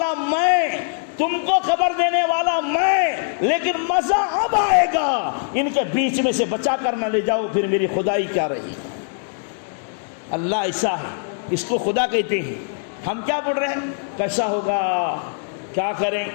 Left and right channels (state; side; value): silent; right; digital silence